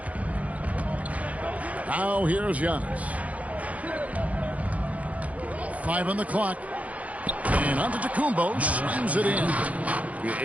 Now here's Giannis. 5 on the clock. And Antetokounmpo slams it in.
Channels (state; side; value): late; left; 0.069 ms